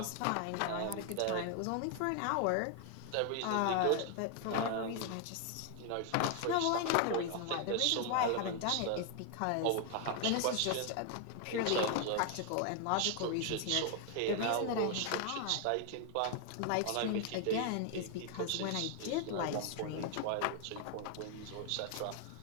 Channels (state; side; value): different; both; correlation 0.00